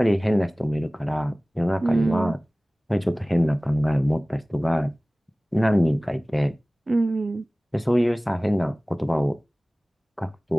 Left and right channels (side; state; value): both; normal; correlation 0.98